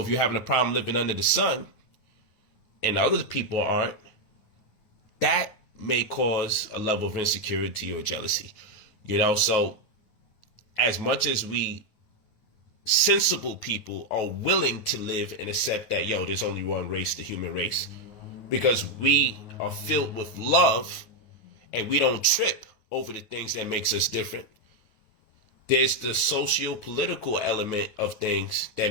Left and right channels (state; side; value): late; right; 9.2 ms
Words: you're having a problem living under the sun and other people aren't, that may cause a level of insecurity or jealousy. So as much as we sensible people are willing to live and accept that, there's only one race, the human race, because we are filled with love and we don't trip over the things that makes us different. There's the socio-political element of things that